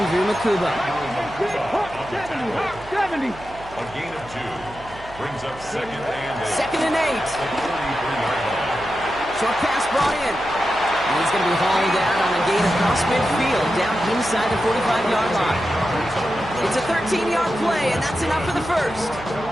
Makuba. 70. A gain of 2. Brings up second and 8. Second and 8. At the 43-yard line. Short pass brought in. And he's going to be hauled down on a gain across midfield, down inside the 45-yard line. It's a 13-yard play, and that's enough for the first.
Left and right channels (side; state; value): right; noise; hum, 18 dB below the sound